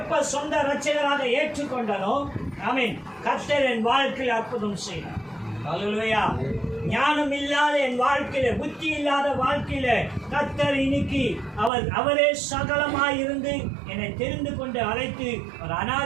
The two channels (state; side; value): drops out; left; at 11.7 s